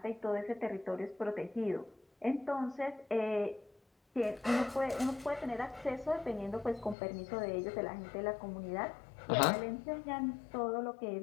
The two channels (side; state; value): right; drops out; at 7.0 s